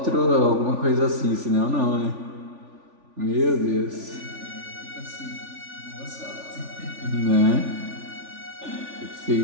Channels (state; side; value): late; left; 3.5 ms